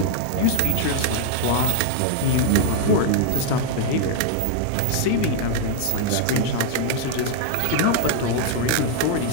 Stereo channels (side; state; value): both; different; correlation 0.00